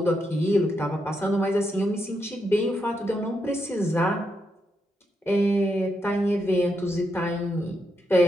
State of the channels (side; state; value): both; normal; correlation 0.82